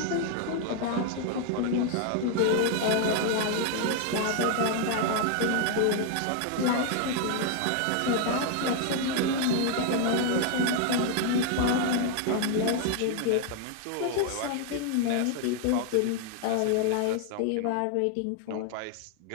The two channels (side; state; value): both; different; correlation 0.00